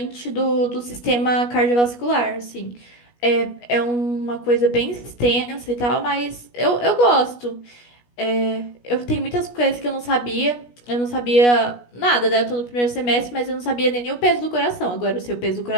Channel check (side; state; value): right; late; 17 ms